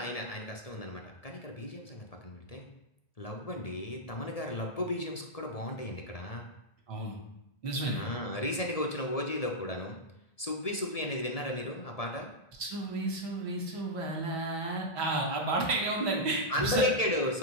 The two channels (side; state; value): right; late; 1.7 ms